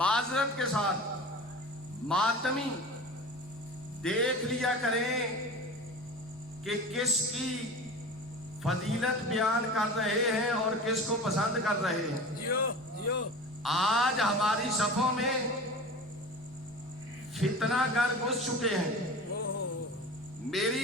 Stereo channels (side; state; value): both; normal; correlation 0.34